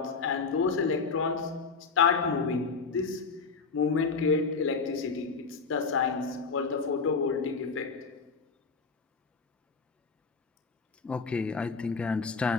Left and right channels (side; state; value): right; quieter; 4.8 dB